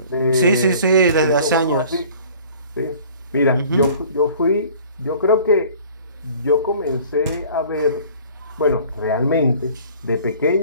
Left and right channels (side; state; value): both; inverted; correlation -0.49